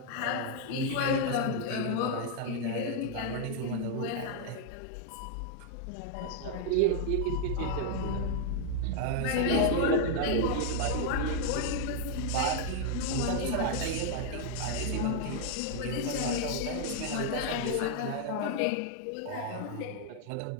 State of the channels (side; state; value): both; different; correlation 0.00